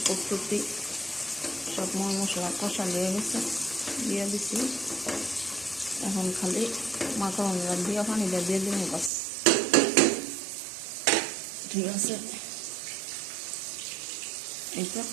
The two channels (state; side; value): drops out; left; at 9.1 s